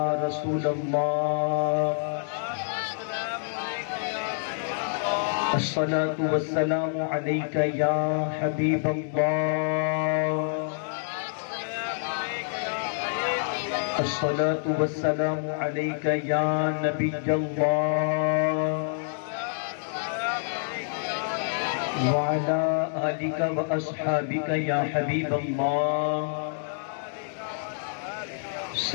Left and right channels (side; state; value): right; silent; digital silence